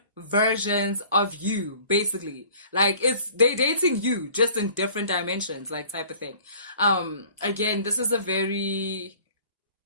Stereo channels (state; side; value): inverted; both; correlation -0.50